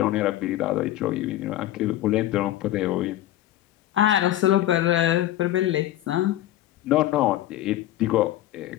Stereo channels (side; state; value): right; quieter; 14.0 dB